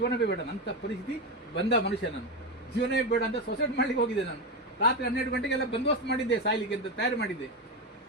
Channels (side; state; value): both; normal; correlation 0.14